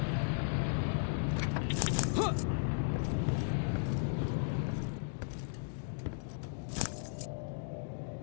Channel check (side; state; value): right; silent; digital silence